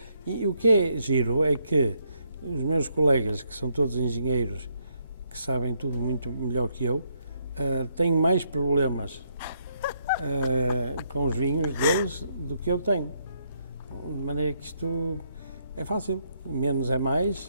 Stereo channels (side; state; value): both; inverted; correlation -0.73